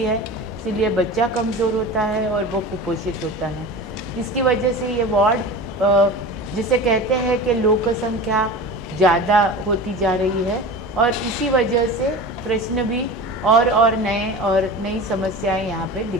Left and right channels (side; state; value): both; normal; correlation 0.33